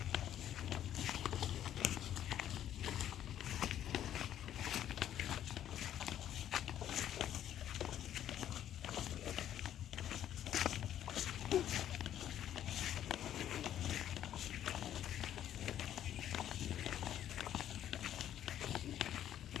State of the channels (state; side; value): quieter; right; 11.0 dB